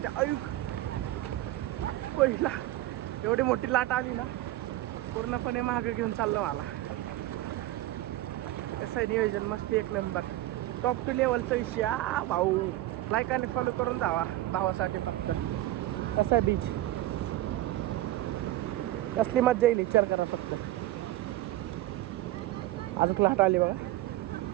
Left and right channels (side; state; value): left; quieter; 15.5 dB